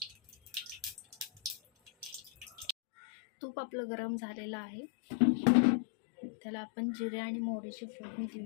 तूप आपलं गरम झालेलं आहे, त्याला आपण जिरे आणि मोहरीची फोडणी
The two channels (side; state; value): right; drops out; at 2.8 s